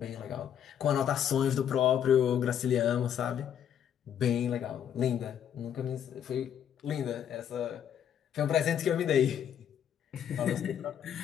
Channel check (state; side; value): quieter; right; 9.2 dB